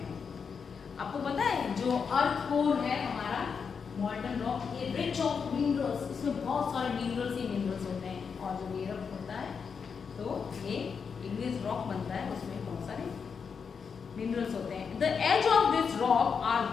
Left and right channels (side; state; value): right; quieter; 6.1 dB